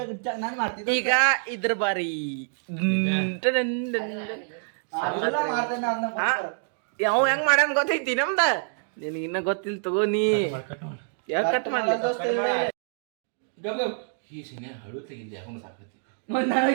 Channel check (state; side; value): silent; left; digital silence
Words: ನಾನು ಮಾಡ್ತಿದ್ದೆ ಈಗ ಇದ್ರ ಬಾರಿ ಯಾವ ಹೆಂಗ್ ಮಾಡ್ಯಾನ ಗೊತ್ತೈತಿ ನಮ್ದ ನಿನಗೆ ಇನ್ನ ಗೊತ್ತಿಲ್ಲ ತಗೋ ನೀ ಯಾಕೆ ಕಟ್ ಮಾಡ್ಲಿ ಈ ಸಿನೆ ಹಳು ತೆಗಿದ್ದೆ ಯಾಕೊಂಡು ಸಾಕತಿ